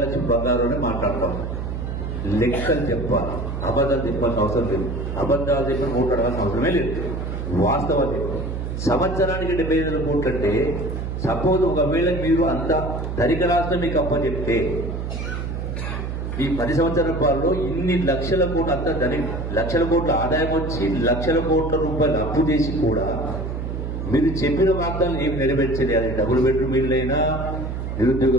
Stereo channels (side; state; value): right; noise; hum, 4 dB below the sound